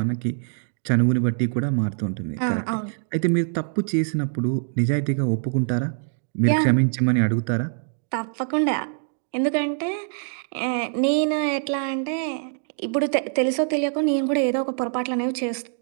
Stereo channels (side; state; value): left; silent; digital silence